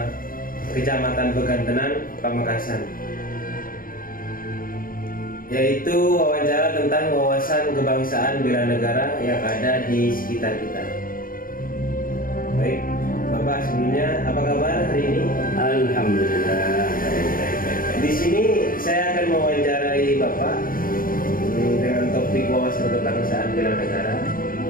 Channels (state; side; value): late; right; 0.41 ms